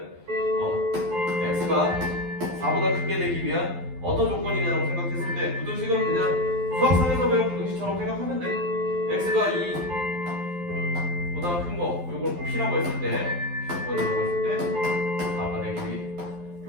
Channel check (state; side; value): late; left; 12 ms